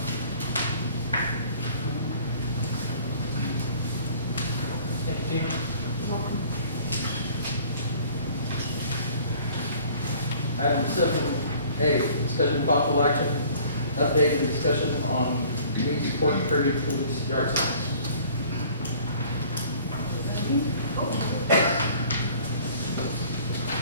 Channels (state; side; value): inverted; both; correlation -0.52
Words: Discussion of possible action, update and discussion on community support and Kirby police yard signs.